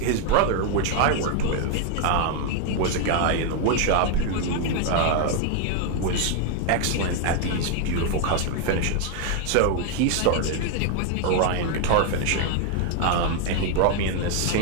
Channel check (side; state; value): both; different; correlation 0.00